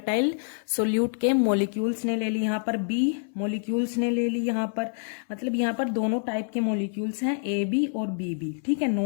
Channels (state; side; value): silent; right; 59 dB below the other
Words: सोल्यूट के मॉलिक्यूल्स ने ले ली, यहाँ पर बी मॉलिक्यूल्स ने ले ली, यहाँ पर मतलब यहाँ पर दोनों टाइप के मॉलिक्यूल्स हैं, ए बी और बी बी, ठीक है,